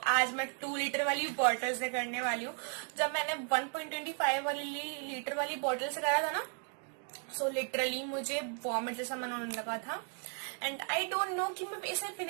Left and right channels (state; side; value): quieter; left; 39.8 dB